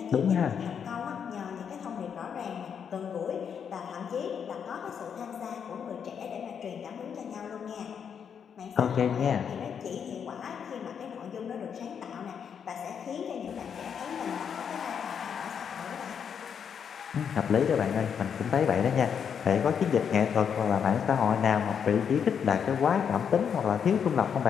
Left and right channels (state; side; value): quieter; right; 7.4 dB